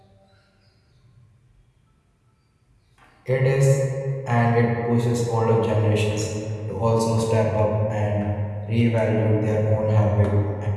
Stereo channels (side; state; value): both; identical; correlation 1.00